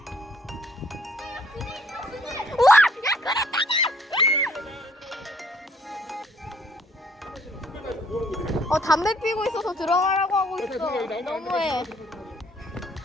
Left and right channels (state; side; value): normal; both; correlation 0.63